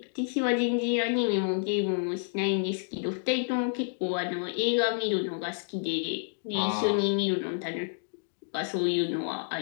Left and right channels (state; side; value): silent; right; digital silence